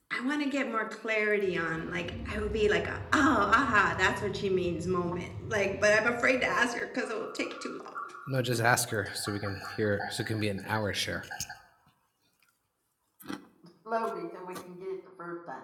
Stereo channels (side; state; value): both; identical; correlation 1.00